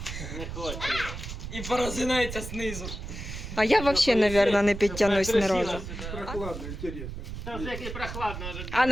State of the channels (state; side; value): noise; right; rumble, 8 dB below the sound